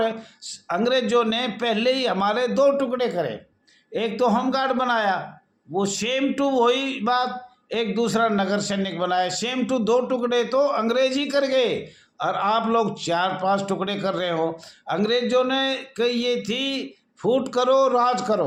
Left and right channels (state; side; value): identical; both; correlation 1.00